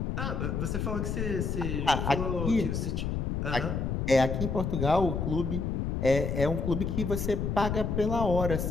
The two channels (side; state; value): left; noise; rumble, 1 dB below the sound